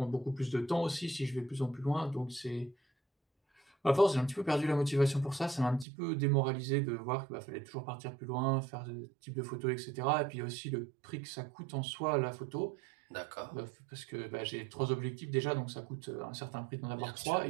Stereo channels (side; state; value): left; drops out; at 5.9 s